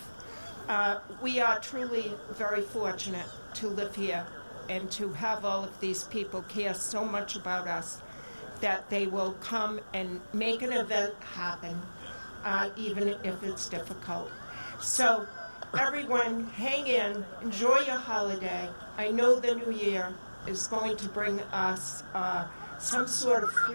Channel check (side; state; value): both; inverted; correlation -1.00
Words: We are truly very fortunate to live here and to have all of these people care so much about us that they will come and make an event happen, even if it's difficult. So everyone, hang in, enjoy your holiday. I know the new year is going to bring us some sort of